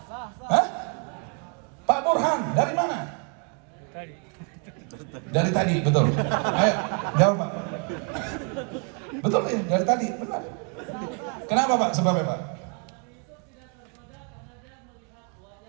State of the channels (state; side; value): quieter; left; 36.6 dB